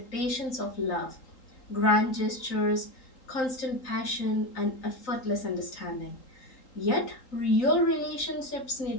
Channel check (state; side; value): late; right; 3.8 ms